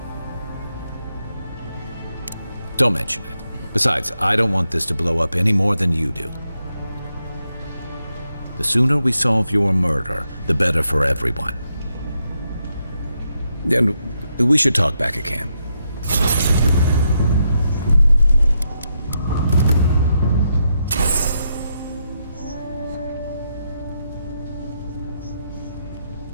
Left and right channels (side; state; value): both; inverted; correlation -0.82